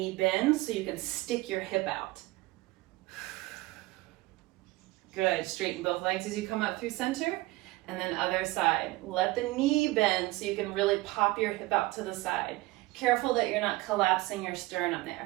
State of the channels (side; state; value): left; quieter; 20.2 dB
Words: bend so you can stick your hip out. Good, straighten both legs as you come up through center, and then other side. Let the knee bend so you can really pop your hip out to the side. Careful that you're not collapsing your sternum